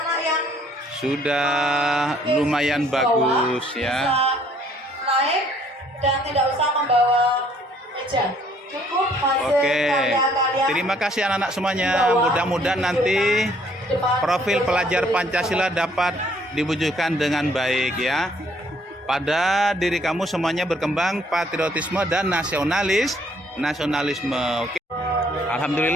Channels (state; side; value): normal; both; correlation 0.63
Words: yang sudah lumayan bagus ya. bisa naik dan tidak usah membawa meja. Cukup hasil Oke, karya-karya. terima kasih anak-anak semuanya. Mudah-mudahan nanti profil pelajar Pancasila dapat diwujudkan dengan baik ya. Pada diri kamu semuanya berkembang patriotisme dan nasionalisme. Oke.